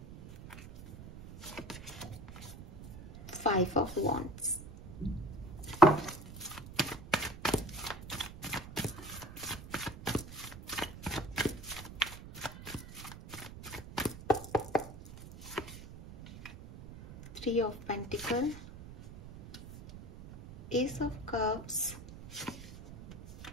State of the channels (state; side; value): noise; right; rumble, 14 dB below the sound